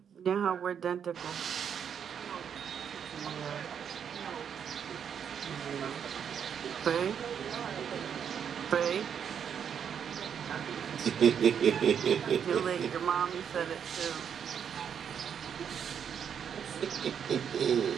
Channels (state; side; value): quieter; left; 7.9 dB